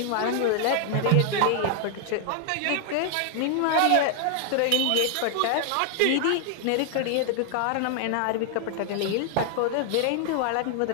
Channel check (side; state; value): both; different; correlation 0.00